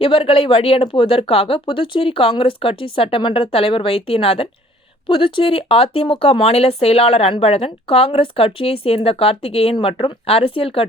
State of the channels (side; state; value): both; normal; correlation 0.56